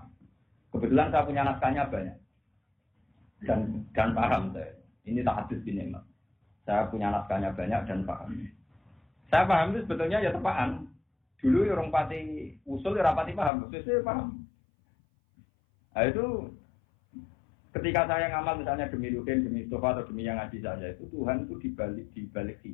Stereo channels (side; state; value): right; drops out; at 13.5 s